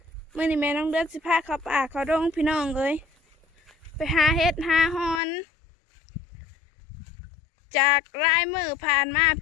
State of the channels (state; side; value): drops out; right; at 5.2 s